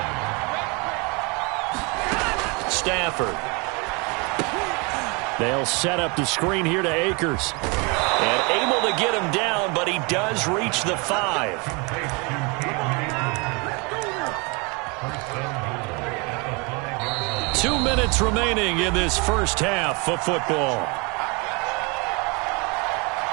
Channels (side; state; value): left; quieter; 29.8 dB